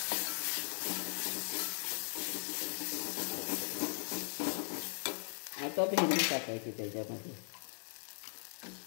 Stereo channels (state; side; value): silent; right; digital silence